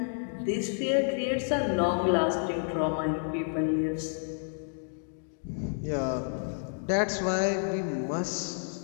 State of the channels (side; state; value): right; silent; digital silence